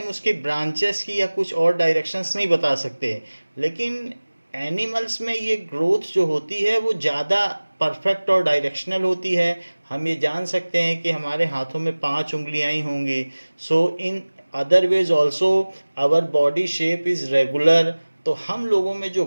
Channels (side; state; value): both; inverted; correlation -1.00